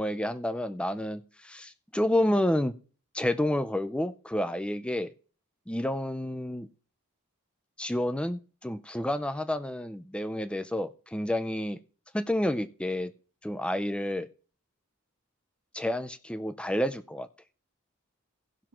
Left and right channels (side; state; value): both; normal; correlation 0.91